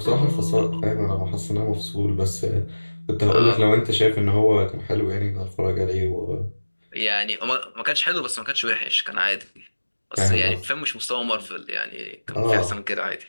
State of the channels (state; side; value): inverted; both; correlation -1.00